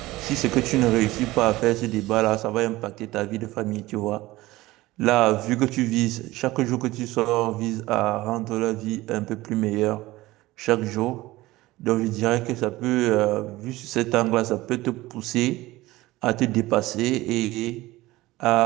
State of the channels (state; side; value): quieter; left; 18.5 dB